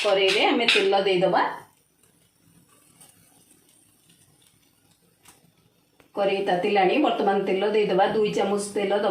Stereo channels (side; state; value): both; identical; correlation 1.00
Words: कड़े रे आमे तेल देदबा। कड़े तातिलाणी, वर्तमान तेल देदबा। 2 चामच तेल